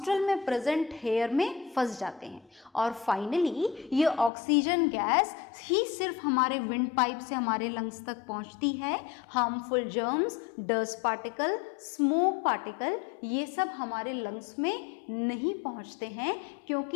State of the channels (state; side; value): drops out; right; at 4.3 s